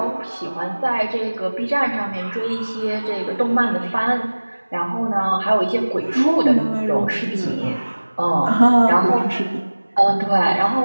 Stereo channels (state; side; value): inverted; both; correlation -1.00